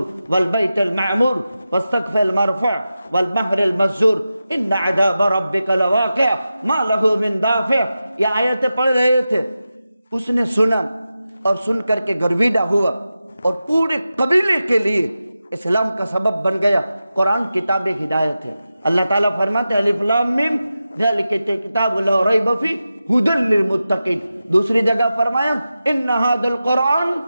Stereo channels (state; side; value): inverted; both; correlation -0.92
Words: والبیت المعمور والسقف المرفوع والبحر المسجور ان عذاب ربک لواقع ما له من دافع۔ یہ آیتیں پڑھ رہے تھے، اس نے سنا اور سن کر کے گرویدہ ہوا، اور پورے قبیلے کے لیے اسلام کا سبب بن گیا۔ قرآن کتاب ہدایت ہے۔ اللہ تعالیٰ فرماتے ہیں الف لام میم ذالک کتاب لا ریب فیہ ھدی للمتقین۔ دوسری جگہ فرمایا ان ھذا القرآن